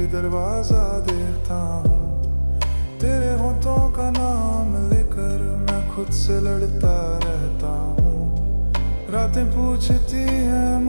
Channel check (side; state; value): both; inverted; correlation -1.00